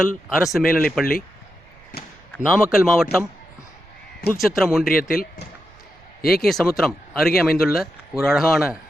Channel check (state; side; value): noise; right; rumble, 28 dB below the sound